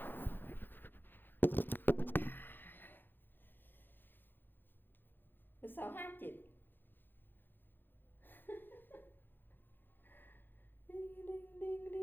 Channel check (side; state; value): right; late; 0.095 ms